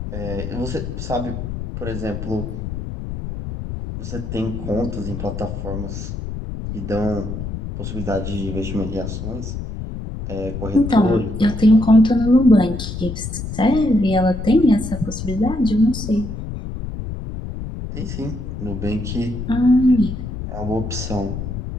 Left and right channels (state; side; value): noise; left; rumble, 6 dB below the sound